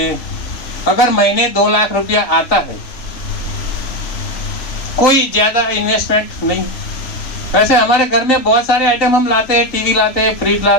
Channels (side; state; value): right; late; 3.9 ms